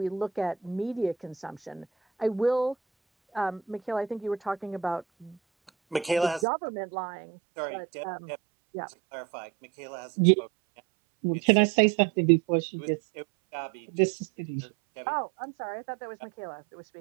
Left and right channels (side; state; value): left; drops out; at 6.5 s